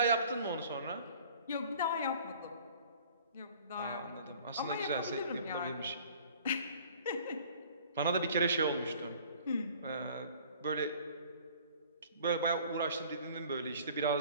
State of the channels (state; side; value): inverted; both; correlation -0.50